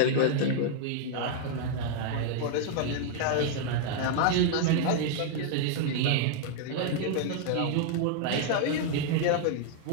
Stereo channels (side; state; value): both; different; correlation -0.01